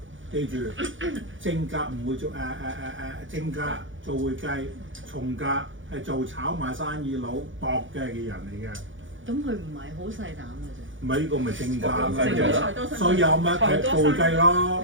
記住，正格唔會做正格做會計，從格係做炒賣生意佬搏嘅人嚟嘅。咁佢唔係好細膽嘅啫。唔係呢個咪正格啦，所以有乜係做會計咯，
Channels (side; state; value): left; late; 0.56 ms